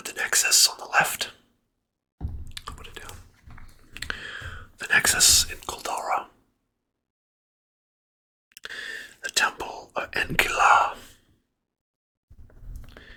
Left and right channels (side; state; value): both; identical; correlation 1.00